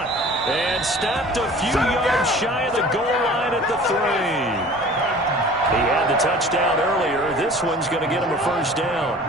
and stopped a few yards shy of the goal line at the 3. He had the touchdown earlier. This one's going to get him a first down.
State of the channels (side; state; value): both; normal; correlation 0.45